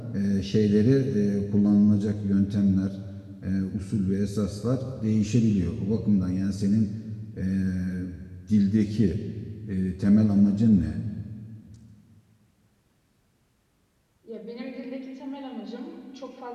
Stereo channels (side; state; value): both; identical; correlation 1.00